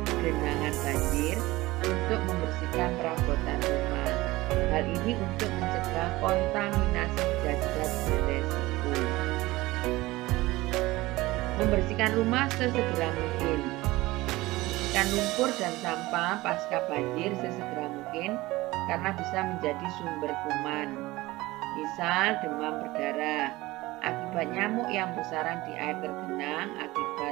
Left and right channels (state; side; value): quieter; left; 19.5 dB